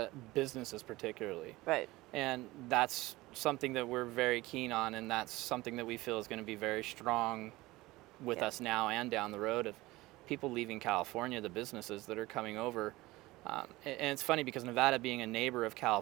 businesses particularly. Right. And that's something that we're very keen on, and that's something that we feel is going to be very strong with Yeah. us now and down the road, of people leaving California, the businesses that are coming over. And it's funny because Nevada being a neighbor of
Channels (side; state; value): left; quieter; 19.6 dB